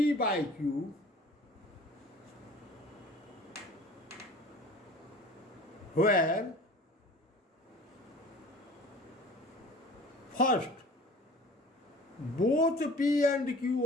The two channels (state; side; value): normal; both; correlation 0.44